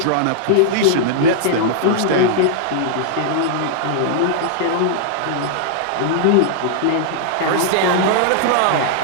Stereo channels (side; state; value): both; different; correlation -0.01